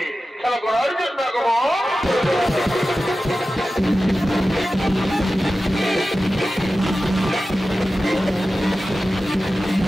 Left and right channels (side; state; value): both; normal; correlation 0.94